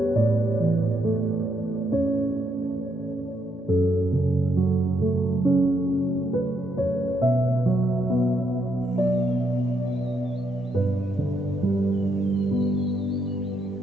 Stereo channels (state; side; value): normal; both; correlation 0.76